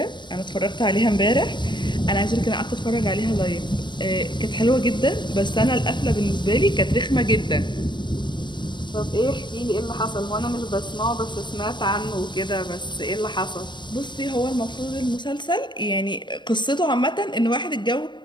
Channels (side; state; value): right; late; 0.22 ms